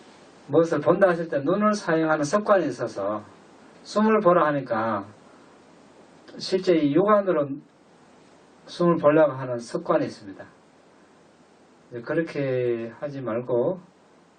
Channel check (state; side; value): identical; both; correlation 1.00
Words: 무엇을 본다 하실 때 눈을 사용하는 습관이 있어서 숨을 보라 하니까 실제 이 육안으로 숨을 보려고 하는 습관이 있습니다. 그렇게 하지 말고